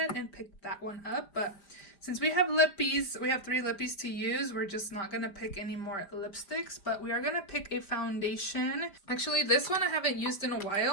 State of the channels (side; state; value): right; late; 5.1 ms